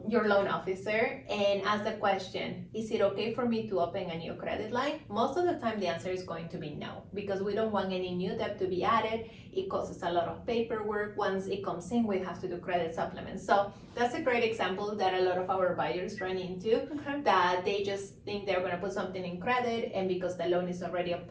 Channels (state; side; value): identical; both; correlation 1.00